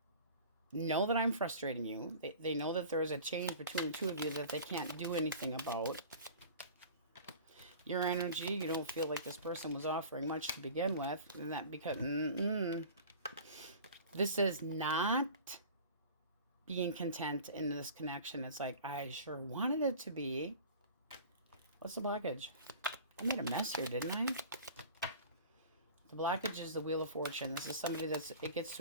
know that I'm frustrating you. They know that there is a change between the two of you that they can't do anything about. Your energy, you don't feel like this person was offering much to begin with. And that because, this is not being content in this connection. It's like, I sure wanted it to be. What's the blockage? I made a mess here, didn't I? The blockage is the Wheel of Fortune. This is somebody it gets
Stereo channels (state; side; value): inverted; both; correlation -0.41